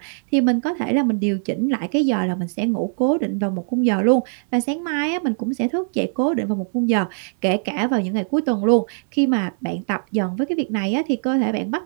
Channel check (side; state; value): left; silent; digital silence